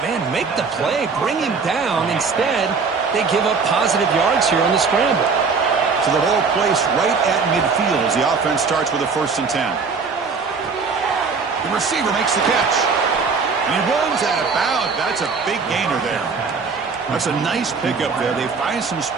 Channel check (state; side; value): quieter; left; 5.0 dB